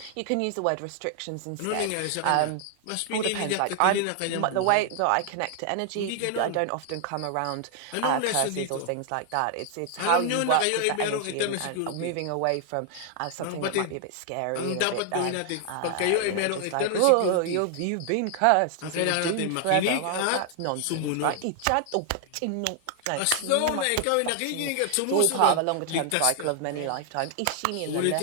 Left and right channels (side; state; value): both; different; correlation 0.00